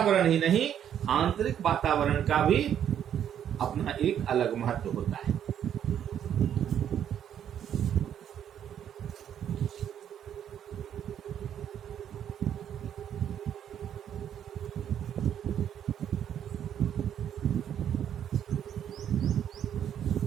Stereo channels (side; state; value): left; quieter; 9.6 dB